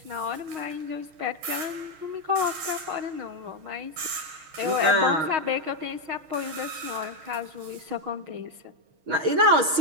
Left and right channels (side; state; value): left; late; 6.4 ms